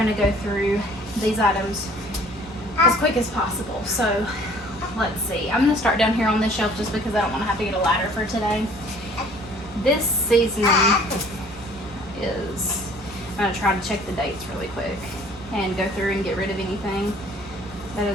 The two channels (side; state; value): both; normal; correlation 0.54